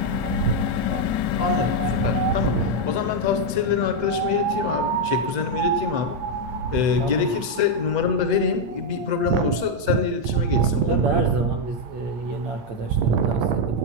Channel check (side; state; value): left; late; 8.6 ms